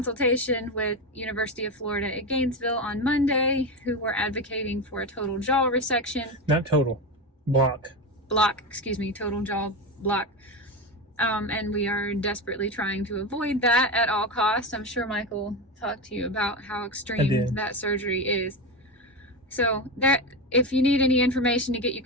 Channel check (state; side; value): normal; both; correlation 0.17